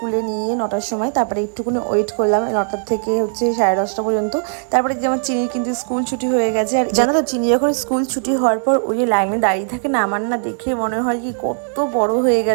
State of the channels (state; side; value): silent; left; digital silence